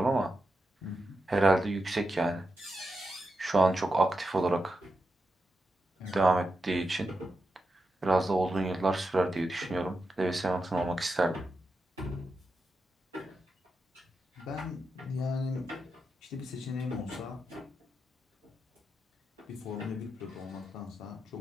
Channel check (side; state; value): both; normal; correlation 0.88